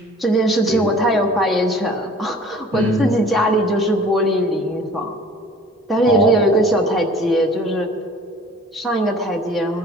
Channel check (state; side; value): normal; both; correlation 0.49